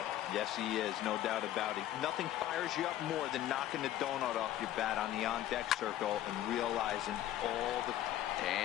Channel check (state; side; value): quieter; right; 13.0 dB